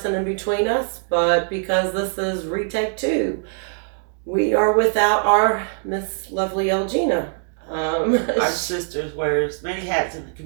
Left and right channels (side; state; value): left; silent; digital silence